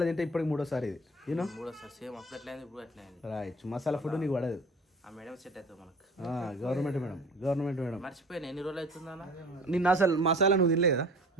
తింటే ఇప్పటికి 3వ సారి ఇది. You know right. మసాలా ఫుడ్ నీకు పడదు. గవర్నమెంట్ మేడం మర్చిపోయినా. ఎన్ని రోజులు అవుతుందా? నిన్న అసలు మసాలా నువ్వు తినలే కదా?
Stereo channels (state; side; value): normal; both; correlation 0.43